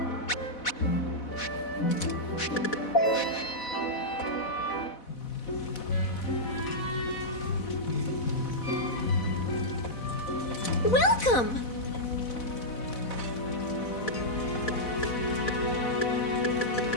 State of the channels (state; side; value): late; right; 4.1 ms